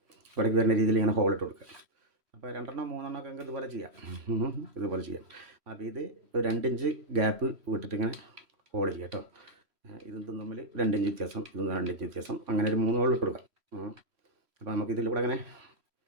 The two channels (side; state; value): left; late; 3.1 ms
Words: ഇവിടേക്ക് വരുന്ന രീതിയിൽ ഇങ്ങനെ ഹോളിട്ട് കൊടുക്കുക. അപ്പോൾ 2 3 ഒക്കെ ഇതുപോലെ ചെയ്യാം. അപ്പോൾ ഇത് ഒരു 2 ഇഞ്ച് ഗ്യാപ്പ് വിട്ടിട്ട് ഇങ്ങനെ ഹോൾ ചെയ്യാം കേട്ടോ. ഇതും തമ്മിൽ 2 ഇഞ്ച് വ്യത്യാസം, ഇതും 2 ഇഞ്ച് വ്യത്യാസം, അങ്ങനെ ഒരു 3 ഹോൾ ഇട്ട് കൊടുക്കാം. അപ്പോൾ നമുക്ക് ഇതിലൂടെ അങ്ങനെ